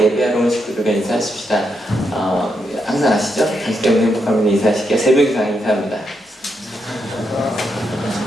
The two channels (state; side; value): normal; both; correlation 0.81